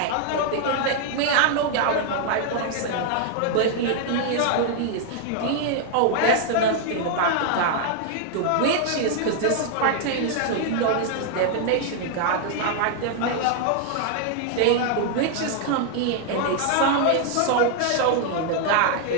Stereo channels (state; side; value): different; both; correlation 0.00